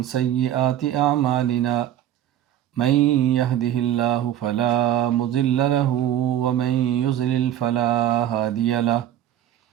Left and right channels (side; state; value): left; quieter; 11.4 dB